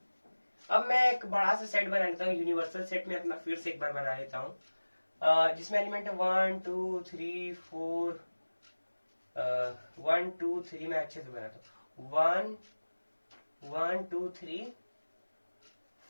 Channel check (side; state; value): both; inverted; correlation -1.00